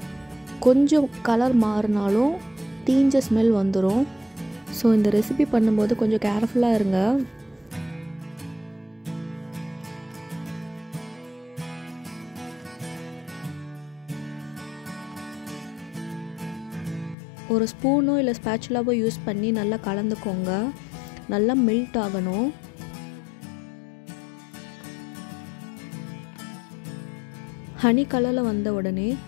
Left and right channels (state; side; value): drops out; right; at 17.2 s